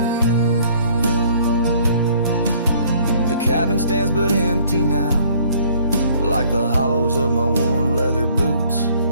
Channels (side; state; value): both; inverted; correlation -0.58